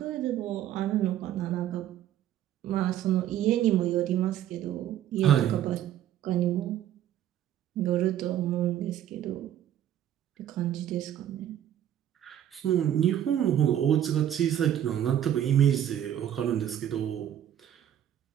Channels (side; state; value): left; quieter; 11.0 dB